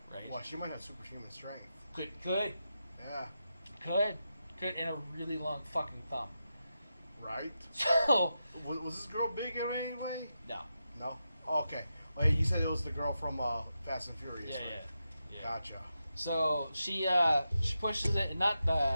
Right? Well, she might have superhuman strength. Could. Yeah. Could, and a really long fucking thumb. Right? So... Was this girl big in any way? No. Oh, okay. Well, you said it was the girl from Fast and Furious, right? Yeah. Gotcha. So, she pushes it, not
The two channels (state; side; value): inverted; both; correlation -0.88